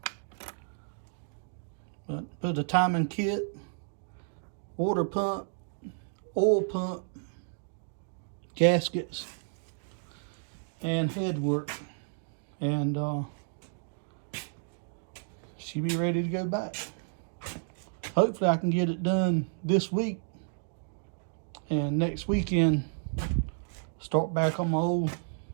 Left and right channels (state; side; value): silent; left; digital silence